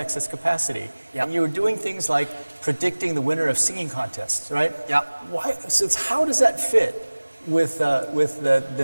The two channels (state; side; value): inverted; both; correlation -1.00